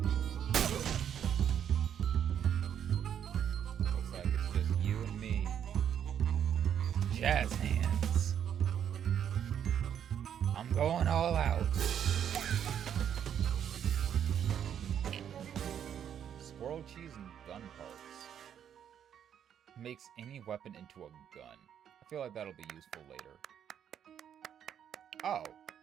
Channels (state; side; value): quieter; left; 9.1 dB